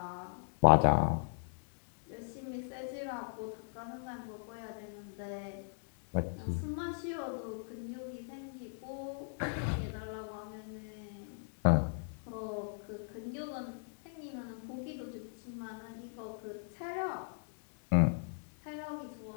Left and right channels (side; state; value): right; silent; digital silence